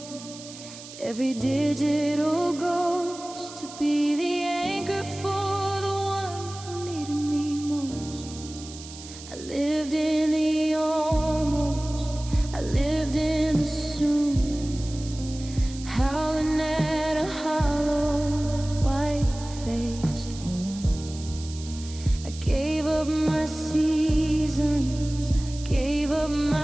Every digital ghost to be the anchor for the one who needed me most. I lived in the almost, I lived in the soon, howling at a hollow, white-faced moon. I gave up my seasons, I gave up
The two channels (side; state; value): right; noise; hiss, 15 dB below the sound